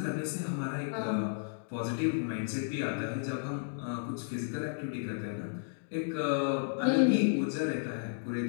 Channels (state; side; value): silent; right; digital silence